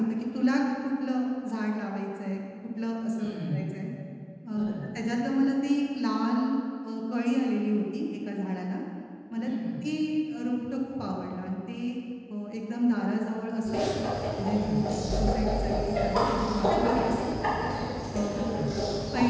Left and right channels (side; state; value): both; identical; correlation 1.00